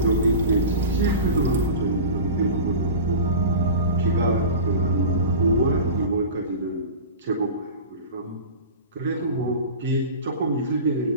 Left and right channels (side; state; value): both; inverted; correlation -0.32